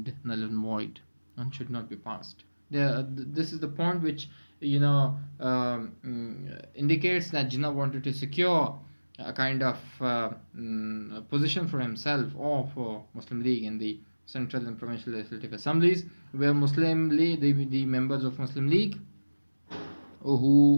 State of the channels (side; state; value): both; inverted; correlation -1.00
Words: null and void and should not be passed. This is the point which indicates that Jinnah wanted to secure a kind of position for himself or for Muslim League in the central and provincial legislative assemblies, where Muslim League, the members of Muslim League